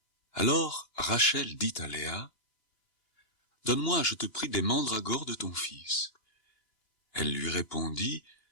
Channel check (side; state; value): right; late; 2.9 ms